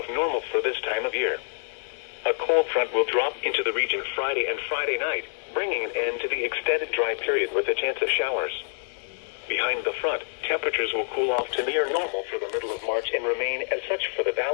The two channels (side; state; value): right; silent; digital silence